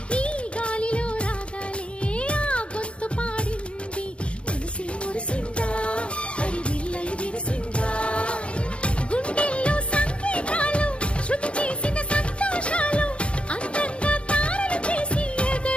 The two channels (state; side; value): late; right; 0.059 ms